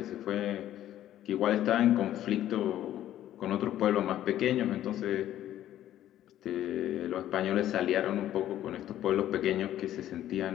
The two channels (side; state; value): right; quieter; 12.4 dB